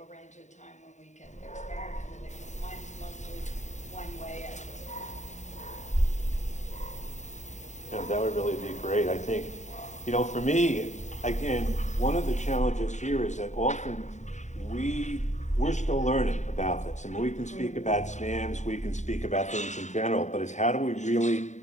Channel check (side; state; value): right; late; 0.34 ms